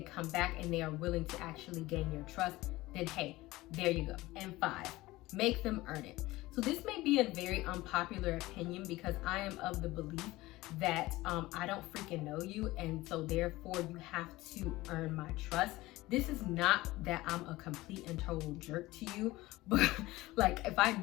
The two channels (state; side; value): quieter; right; 18.9 dB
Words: come back and they are willing to actually gain your trust, then hey, there you go. And 5, make them earn it. So this may be a very unpopular opinion, because I am of the belief that I don't freaking know you, and so therefore you have to earn my trust. This is not that I'm a complete and total jerk to you, but like if I